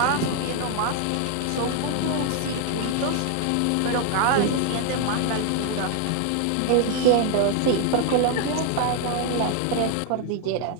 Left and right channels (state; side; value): different; both; correlation 0.00